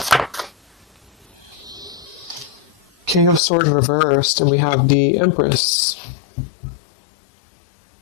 King of Swords reversed, and we have the Empress.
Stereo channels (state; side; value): drops out; right; at 3.4 s